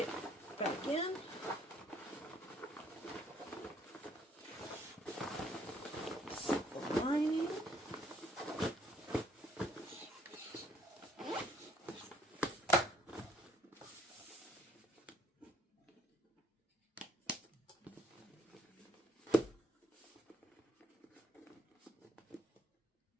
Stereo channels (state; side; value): normal; both; correlation 0.64